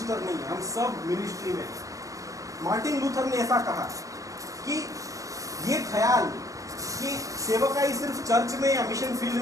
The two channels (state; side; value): late; left; 0.16 ms